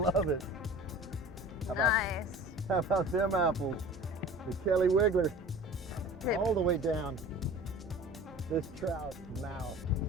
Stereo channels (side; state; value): both; normal; correlation 0.41